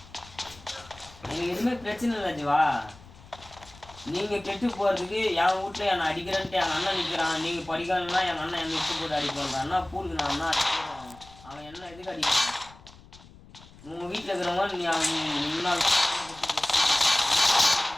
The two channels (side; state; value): left; noise; rumble, 22 dB below the sound